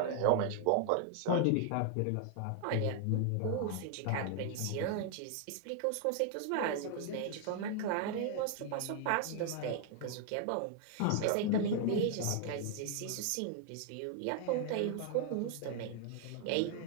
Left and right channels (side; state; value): both; different; correlation 0.00